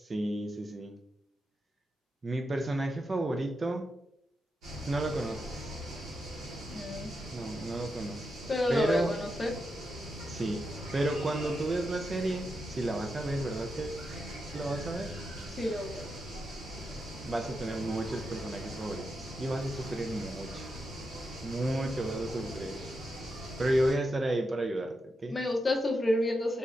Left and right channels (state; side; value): normal; both; correlation 0.86